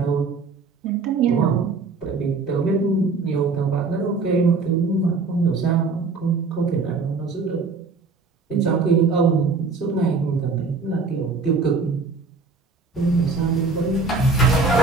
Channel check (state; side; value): quieter; left; 4.2 dB